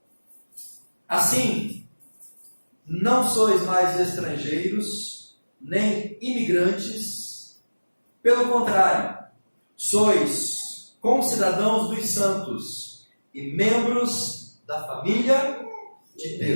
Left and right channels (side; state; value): both; inverted; correlation -1.00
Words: Assim, não sois mais estrangeiros, nem imigrantes, pelo contrário, sois concidadãos dos santos e membros da família de